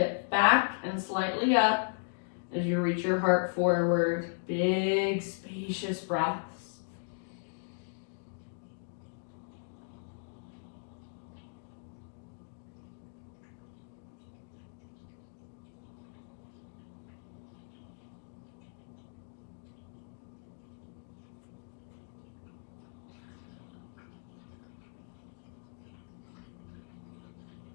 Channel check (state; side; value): silent; right; digital silence